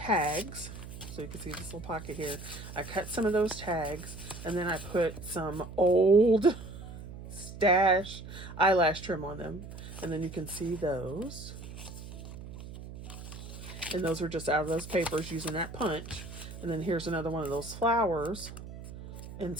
So you can see this little pocket here. I cut some of those tags, and then I put some old stash eyelash trim on them. And then you can see those. And those are just out of those papers using that punch. And then here's another one of those flowers and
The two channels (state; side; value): noise; right; hum, 12 dB below the sound